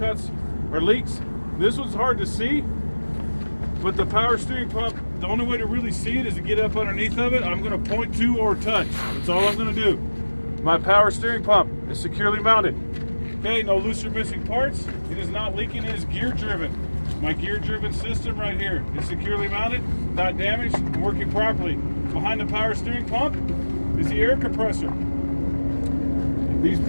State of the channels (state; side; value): inverted; both; correlation -1.00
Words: or leaks. This one's hard to see, but the power steering pump, the only way to really see it is to get up underneath of it. I'm going to point to or touch. That's all I'm going to do. My power steering pump is securely mounted. Okay, no loose or missing parts. It is not leaking. It is gear driven. My gear driven system right here is securely mounted, not damaged, and working properly. Behind the power steering pump is the air compressor. These